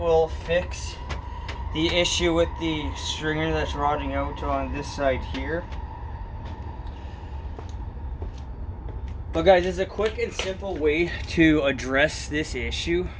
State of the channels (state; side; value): identical; both; correlation 1.00